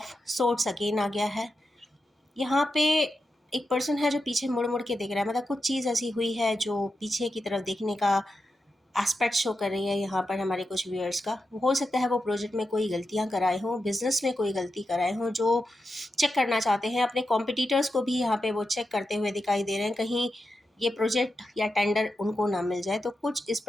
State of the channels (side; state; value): both; normal; correlation 0.89